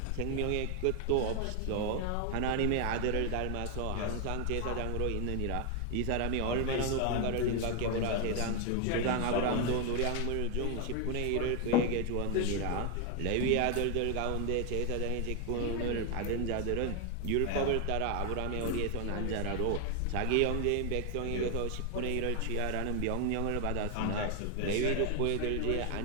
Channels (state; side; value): different; both; correlation 0.00